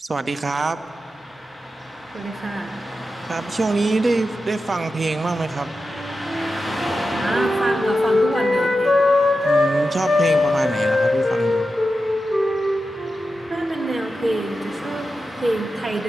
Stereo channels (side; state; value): both; normal; correlation 0.91